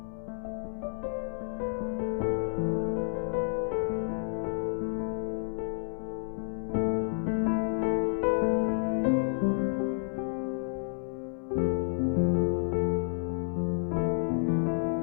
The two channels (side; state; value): right; silent; 58 dB below the other